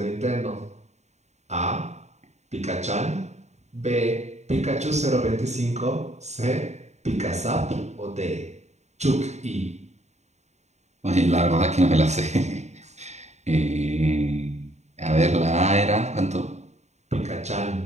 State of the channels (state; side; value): late; left; 0.33 ms